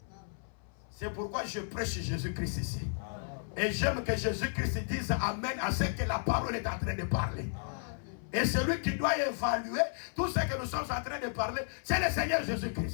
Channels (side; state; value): right; silent; 56 dB below the other